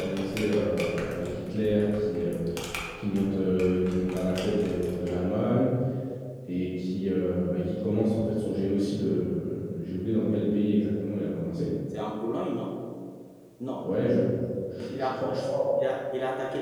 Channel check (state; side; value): identical; both; correlation 1.00